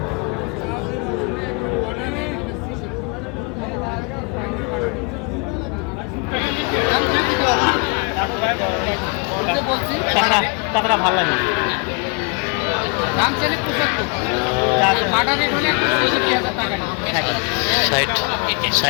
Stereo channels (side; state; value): right; quieter; 33.8 dB